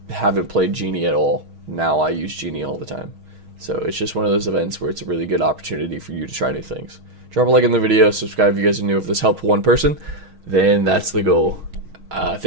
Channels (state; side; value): late; left; 6.4 ms